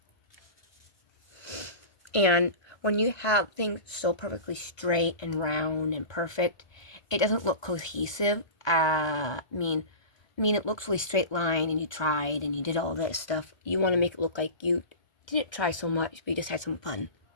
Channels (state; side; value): late; right; 1.2 ms